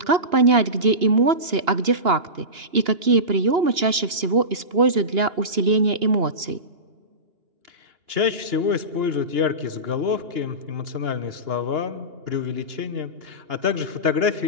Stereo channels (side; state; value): left; late; 2.9 ms